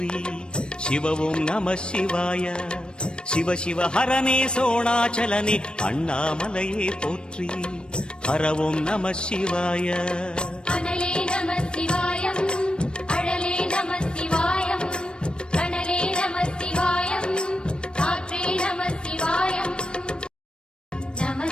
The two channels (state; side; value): late; right; 0.053 ms